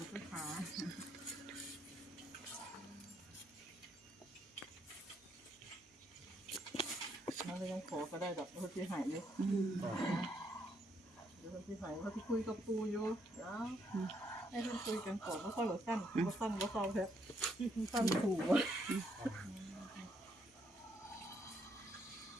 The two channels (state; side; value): normal; both; correlation 0.74